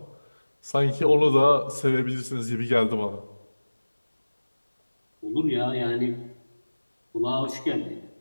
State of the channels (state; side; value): inverted; both; correlation -1.00